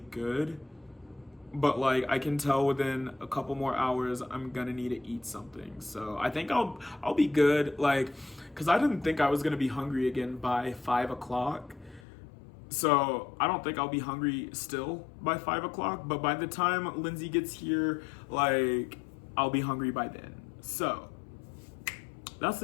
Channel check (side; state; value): right; drops out; at 12.0 s